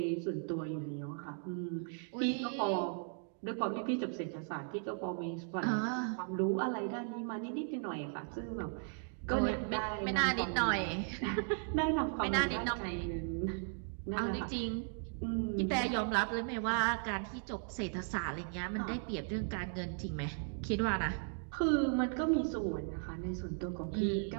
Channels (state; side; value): silent; left; 53 dB below the other